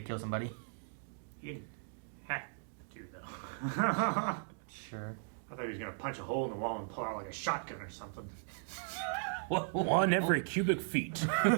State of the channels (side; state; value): left; silent; digital silence